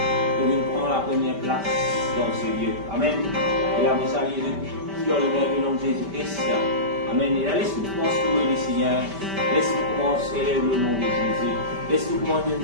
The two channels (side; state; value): left; late; 5.1 ms